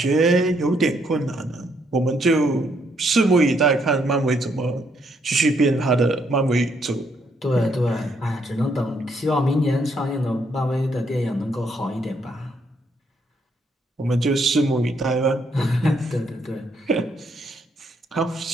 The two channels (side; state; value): both; normal; correlation 0.73